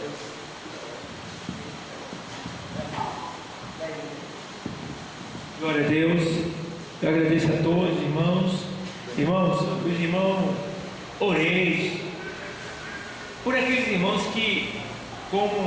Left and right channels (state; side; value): identical; both; correlation 1.00